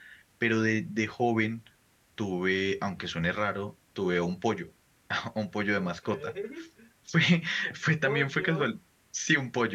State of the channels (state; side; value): identical; both; correlation 1.00